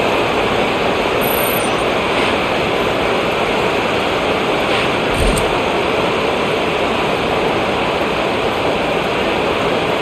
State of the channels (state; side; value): identical; both; correlation 1.00